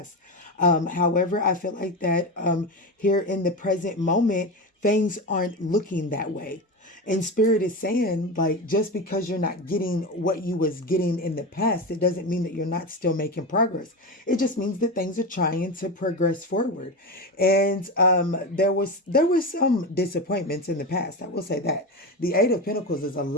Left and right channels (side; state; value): both; normal; correlation 0.21